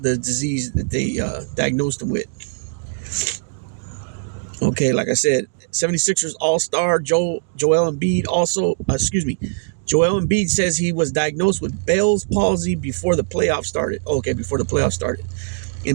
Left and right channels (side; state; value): left; silent; digital silence